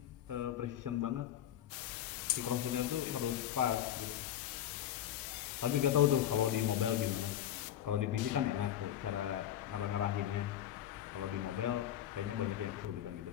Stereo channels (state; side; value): quieter; right; 11.1 dB